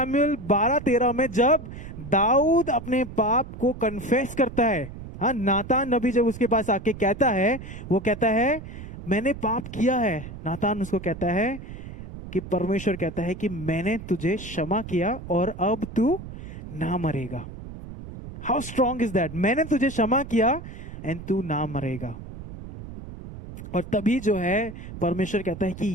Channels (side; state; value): right; noise; rumble, 12 dB below the sound